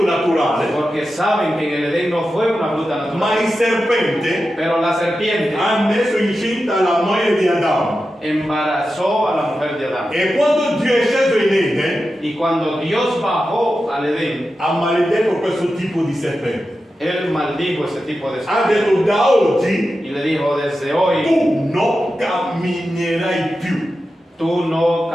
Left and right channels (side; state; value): both; normal; correlation 0.91